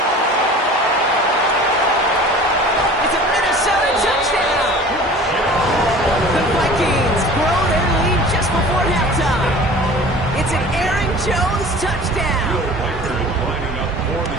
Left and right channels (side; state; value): both; normal; correlation 0.43